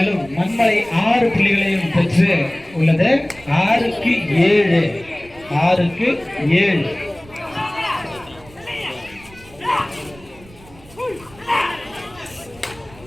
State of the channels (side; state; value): right; noise; rumble, 23 dB below the sound